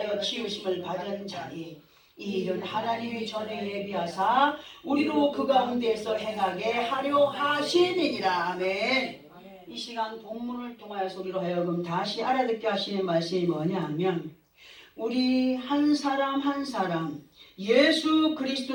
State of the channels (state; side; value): identical; both; correlation 1.00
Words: 지으심을 받은 자니 이 일은 하나님이 전에 예비하사 우리로 그 가운데서 행하게 하려 하시니라. 아멘. 이 시간 본문을 통하여서 우리로 하여금 다시 알아듣게 하시는 말씀이 뭐냐 하면 우리 한 사람 한 사람 예수